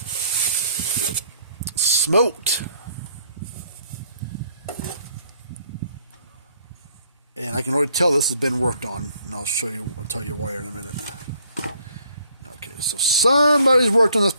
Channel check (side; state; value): both; inverted; correlation -0.66